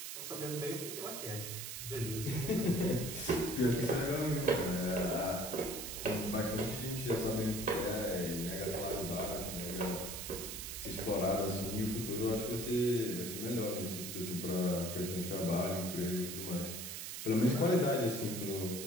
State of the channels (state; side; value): noise; right; hiss, 6 dB below the sound